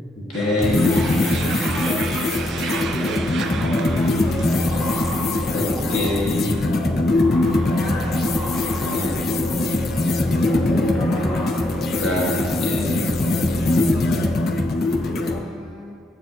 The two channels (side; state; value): both; normal; correlation 0.78